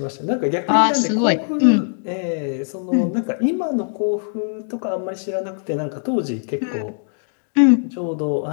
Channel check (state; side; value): silent; right; digital silence